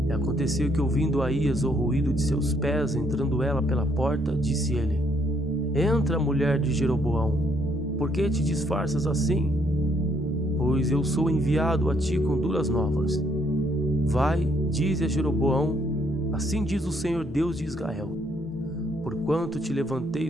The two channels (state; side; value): normal; both; correlation 0.69